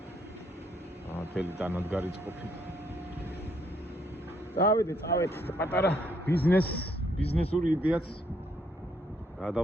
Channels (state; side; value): normal; both; correlation 0.70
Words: თელი დანადგარი წყობით. წავედით, პატარა ბიზნესური იდეაც